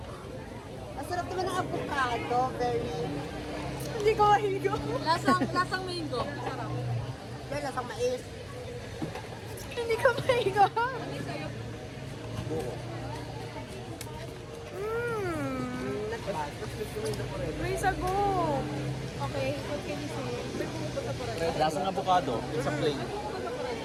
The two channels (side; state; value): both; identical; correlation 1.00